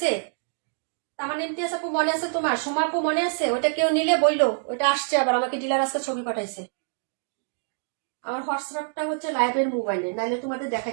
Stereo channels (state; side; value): silent; left; digital silence